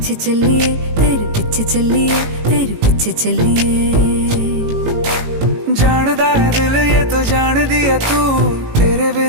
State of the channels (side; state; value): left; late; 18 ms